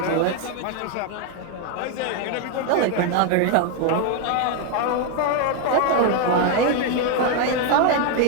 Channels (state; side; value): different; both; correlation 0.01